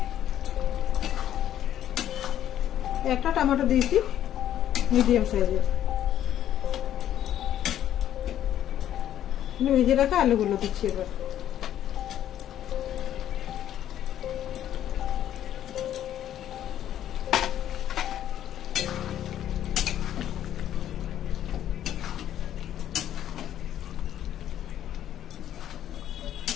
একটা টমেটো দিয়েছি মিডিয়াম সাইজের। ভেজে রাখা আলুগুলো দিচ্ছি এবার।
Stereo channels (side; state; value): right; quieter; 11.2 dB